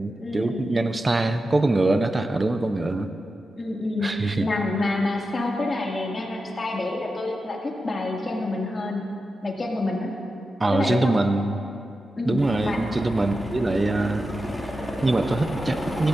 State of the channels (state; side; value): normal; both; correlation 0.90